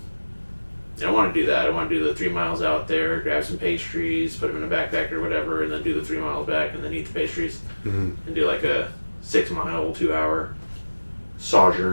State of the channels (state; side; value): inverted; both; correlation -1.00